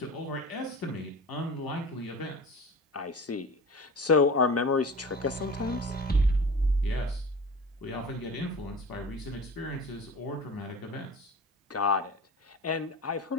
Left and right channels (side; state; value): both; normal; correlation 0.36